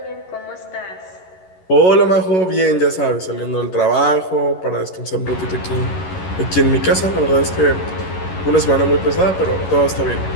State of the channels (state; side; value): late; right; 11 ms